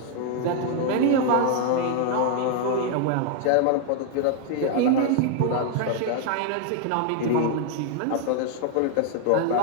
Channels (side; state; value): both; different; correlation 0.00